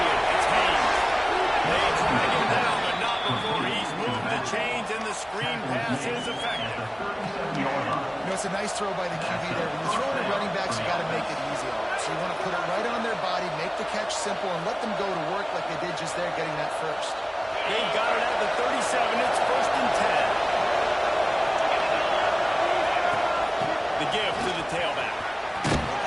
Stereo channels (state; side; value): identical; both; correlation 1.00